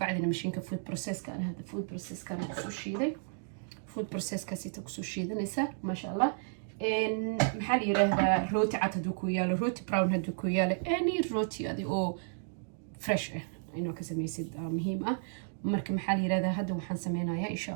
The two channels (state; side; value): silent; left; digital silence